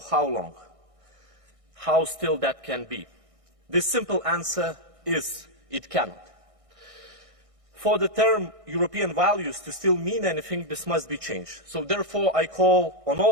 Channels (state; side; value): late; left; 1.6 ms